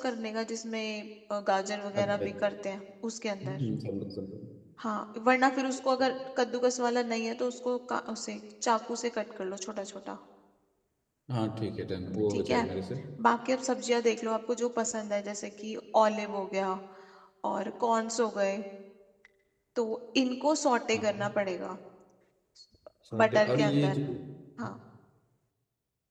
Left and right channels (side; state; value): both; identical; correlation 1.00